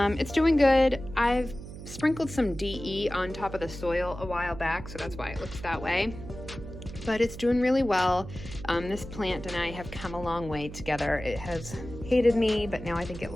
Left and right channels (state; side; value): noise; right; hum, 12 dB below the sound